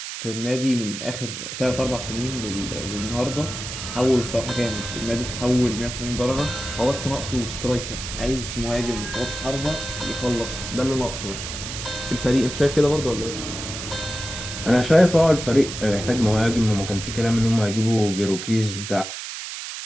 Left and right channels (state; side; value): noise; right; hiss, 8 dB below the sound